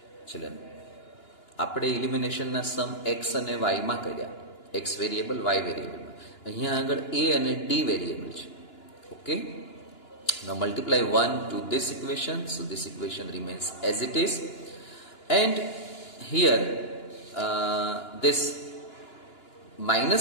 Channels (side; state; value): right; late; 2.9 ms